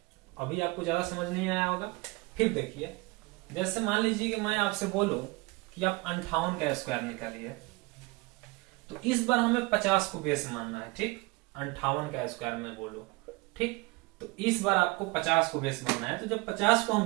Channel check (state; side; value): quieter; left; 24.1 dB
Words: अभी आपको ज्यादा समझ नहीं आया होगा। फिर देखिए, जैसे मान लीजिए कि मैं आपसे बोलूं कि आप 58 का स्क्वायर निकालिए, तो इस बार हमें 50 को बेस मानना है, ठीक। 58 का स्क्वायर में बोलूं, ठीक, तो इस बार आपको 50 को बेस मानना है। तो जब 50 को